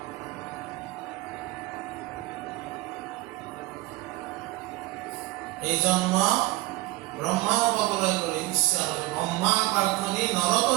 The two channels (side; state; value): left; quieter; 20.0 dB